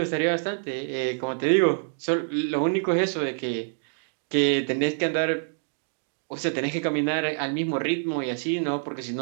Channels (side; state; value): left; silent; digital silence